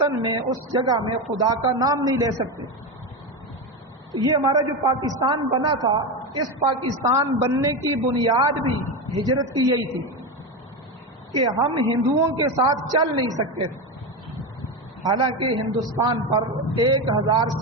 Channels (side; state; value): both; normal; correlation 0.16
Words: میں، اس جگہ میں خدا کا نام نہیں لے سکتے۔ یہ ہمارا جو پاکستان بنا تھا، اس پاکستان بننے کی بنیاد بھی ہجرت کی یہی تھی کہ ہم ہندوؤں کے ساتھ چل نہیں سکتے تھے۔ حالانکہ ہندوستان پر 1000